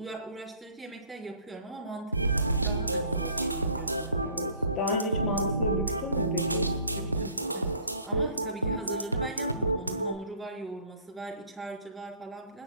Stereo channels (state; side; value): inverted; both; correlation -0.54